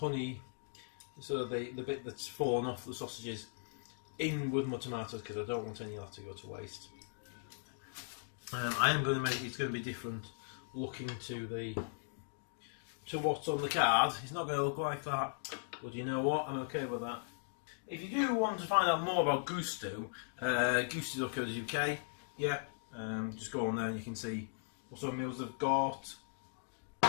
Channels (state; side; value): silent; right; digital silence